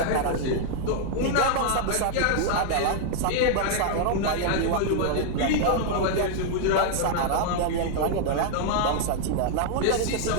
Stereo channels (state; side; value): different; both; correlation 0.00